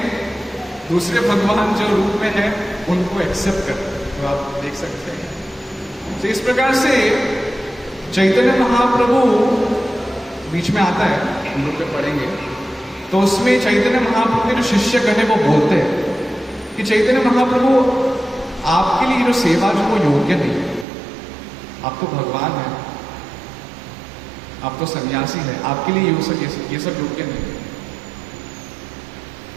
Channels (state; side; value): drops out; left; at 20.9 s